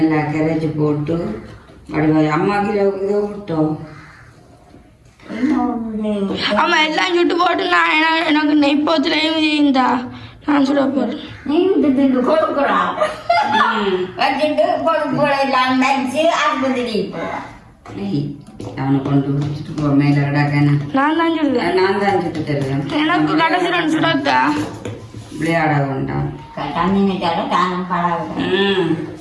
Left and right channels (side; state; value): both; identical; correlation 1.00